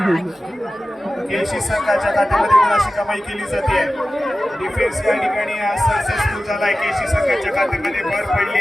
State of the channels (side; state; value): both; normal; correlation 0.95